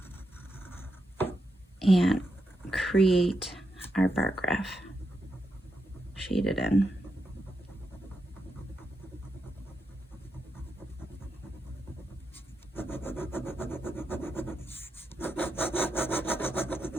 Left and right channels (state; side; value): normal; both; correlation 0.85